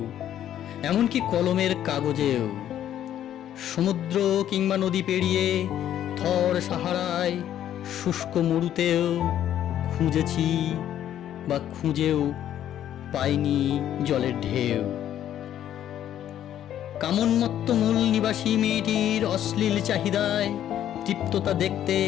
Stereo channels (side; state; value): right; quieter; 11.1 dB